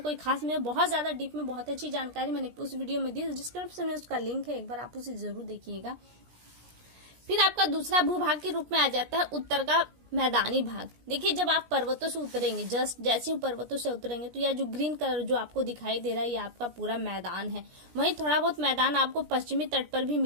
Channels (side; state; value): left; late; 17 ms